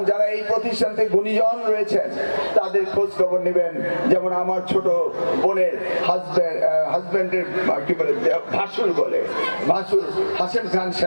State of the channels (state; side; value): inverted; both; correlation -1.00